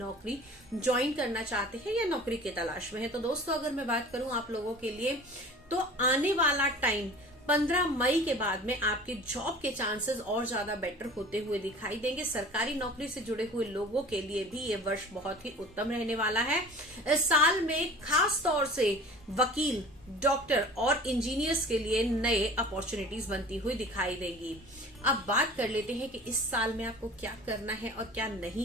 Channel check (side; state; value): both; normal; correlation 0.42